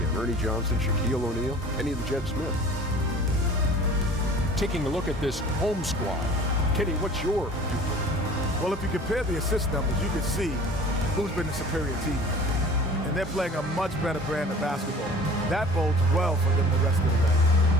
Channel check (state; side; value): normal; both; correlation 0.45